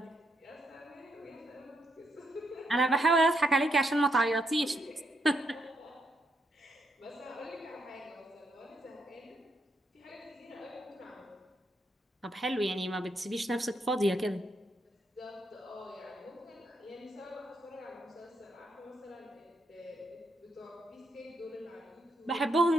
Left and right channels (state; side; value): normal; both; correlation 0.78